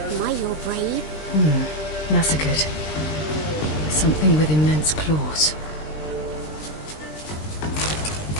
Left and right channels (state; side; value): late; right; 20 ms